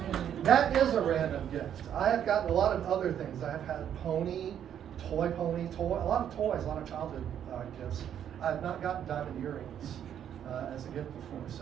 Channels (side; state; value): left; quieter; 9.6 dB